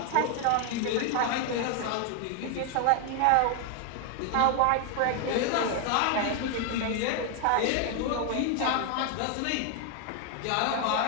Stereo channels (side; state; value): both; different; correlation 0.01